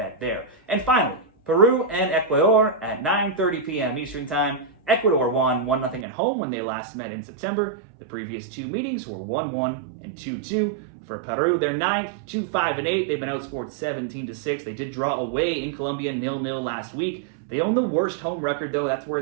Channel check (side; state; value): left; drops out; at 6.1 s